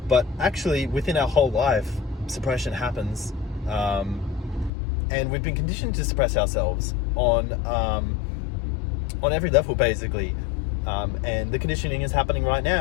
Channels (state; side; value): drops out; right; at 4.7 s